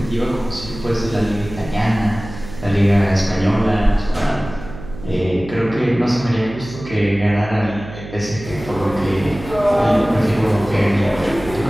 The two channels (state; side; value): noise; right; hum, 13 dB below the sound